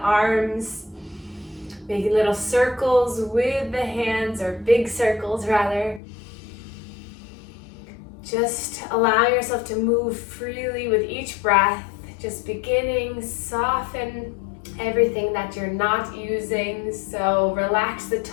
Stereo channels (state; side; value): drops out; right; at 6.0 s